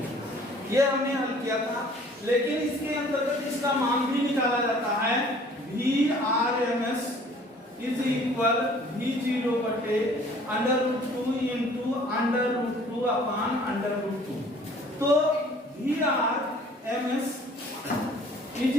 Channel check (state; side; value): normal; both; correlation 0.53